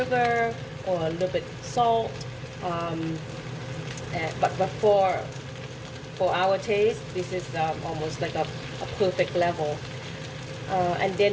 or a little bit salt, but for our taste, this is almost like a perfect level. And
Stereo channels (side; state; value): both; identical; correlation 1.00